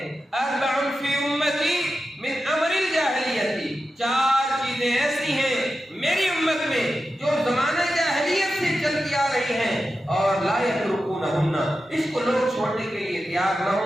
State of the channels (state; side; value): normal; both; correlation 0.91